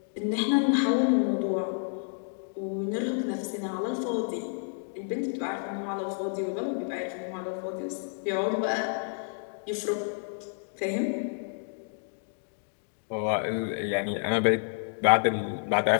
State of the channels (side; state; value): right; silent; digital silence